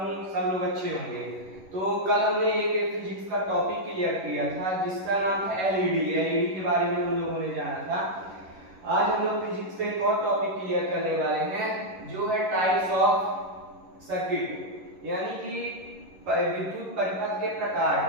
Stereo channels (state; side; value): late; left; 11 ms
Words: सब लोग अच्छे होंगे। तो कल हमने एक फिजिक्स का टॉपिक क्लियर किया था जिसका नाम था एलईडी के बारे में हम लोगों ने जाना था। आज हम लोग फिजिक्स पे एक और टॉपिक क्लियर करने वाले हैं जो है टाइप्स ऑफ सर्किट, यानी कि विद्युत परिपथ के प्रकार,